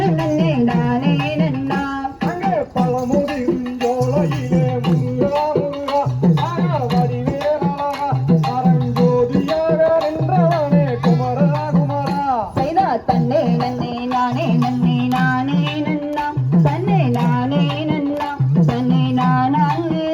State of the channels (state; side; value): identical; both; correlation 1.00